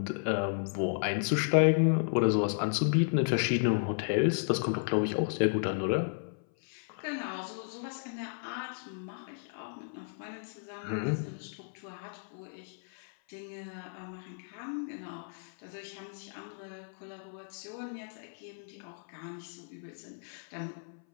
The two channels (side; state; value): right; silent; 55 dB below the other